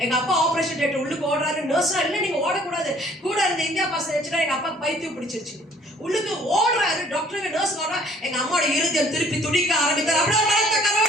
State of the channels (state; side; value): normal; both; correlation 0.58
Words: எங்க அப்பா ஆபரேஷன் டேட் உள்ளுக்கு ஓடுறாரு. நர்ஸா இல்ல நீங்க ஓடக்கூடாது, கூட இருந்த இந்தியா பாஸ் வச்சுட்டா எங்க அப்பா பைத்தியம் பிடிச்சிருச்சு. உள்ளுக்கு ஓடுறாரு. டாக்டருக்கு நர்ஸ் வர எங்க அம்மாவோட இருதயம் திருப்பி துடிக்க ஆரம்பித்தார். அப்படியே எங்க